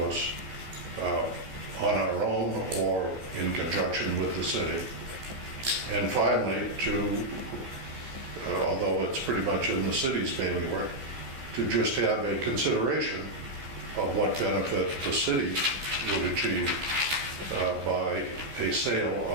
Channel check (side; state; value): left; late; 15 ms